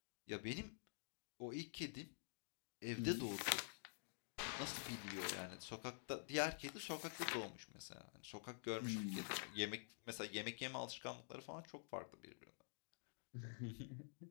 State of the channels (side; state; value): right; silent; digital silence